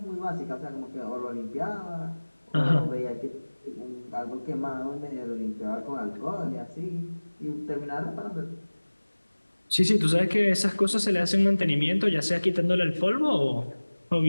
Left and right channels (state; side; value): inverted; both; correlation -1.00